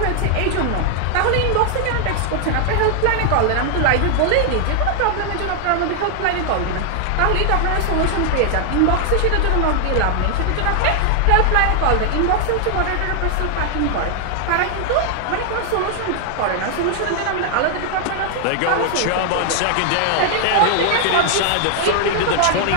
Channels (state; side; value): different; both; correlation 0.00